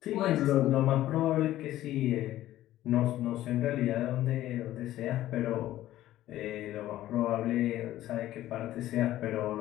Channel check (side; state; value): right; quieter; 14.2 dB